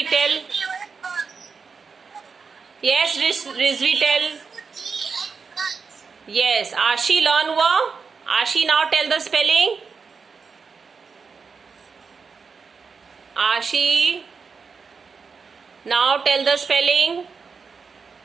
tell. Yes, Rizvi, tell. Yes, Ashi learn हुआ. Ashi, now tell the spelling. Ashi, now tell the spelling.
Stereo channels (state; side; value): quieter; left; 5.3 dB